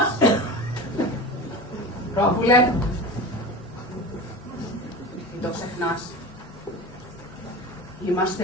Πρόβουλε, μην το ξεχνάς. Είμαστε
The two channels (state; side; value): normal; both; correlation 0.31